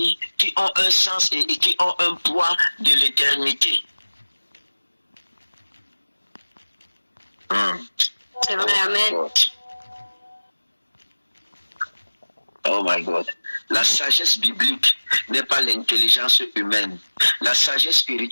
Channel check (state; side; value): inverted; both; correlation -1.00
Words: qui ont un sens et qui ont un poids de l'éternité. C'est vrai, amen. Oh my God. La sagesse biblique n'est pas l'intelligence humaine. La sagesse